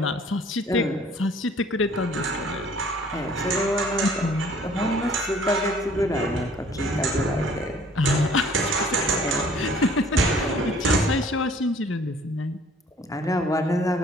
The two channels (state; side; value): normal; both; correlation 0.55